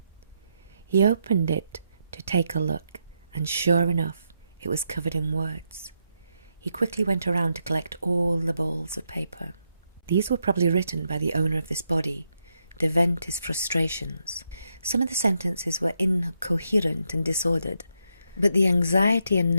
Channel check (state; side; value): inverted; both; correlation -0.81